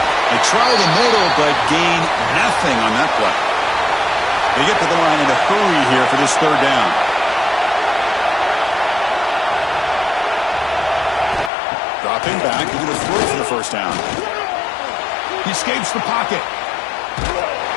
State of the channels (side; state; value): right; drops out; at 11.5 s